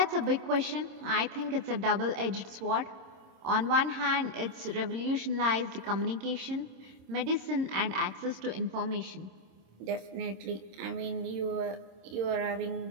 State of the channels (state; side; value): late; left; 26 ms